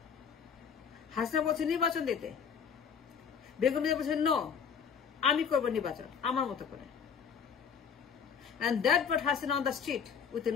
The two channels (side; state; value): right; quieter; 6.9 dB